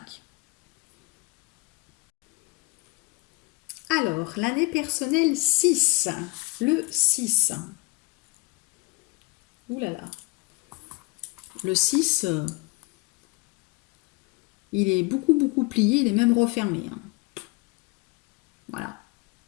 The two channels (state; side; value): quieter; right; 24.6 dB